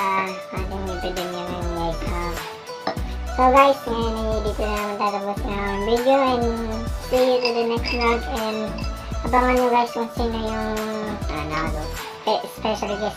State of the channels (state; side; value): identical; both; correlation 1.00